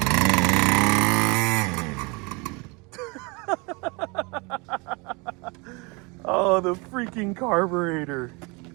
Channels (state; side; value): quieter; left; 28.7 dB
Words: Oh, the freaking carburetor.